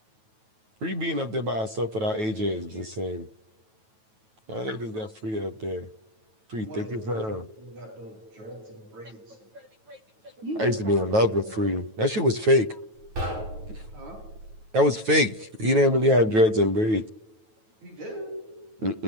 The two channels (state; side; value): late; left; 9.2 ms